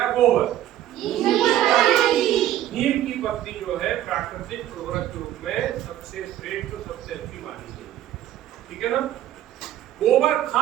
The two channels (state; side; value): quieter; left; 12.5 dB